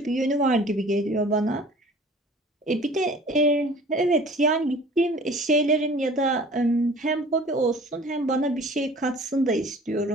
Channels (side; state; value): both; normal; correlation 0.47